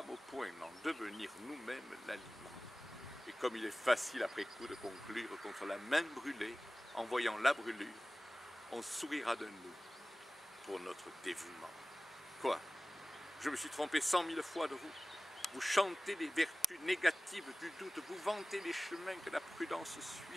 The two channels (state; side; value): normal; both; correlation 0.97